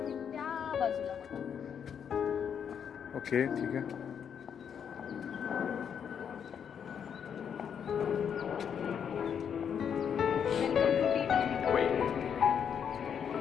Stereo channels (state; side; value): quieter; right; 7.8 dB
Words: त्या बाजूला बघा. ओके ठीक आहे. वेलकम टू टी टपरी.